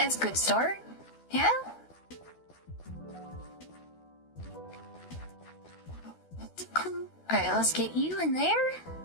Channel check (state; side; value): late; right; 12 ms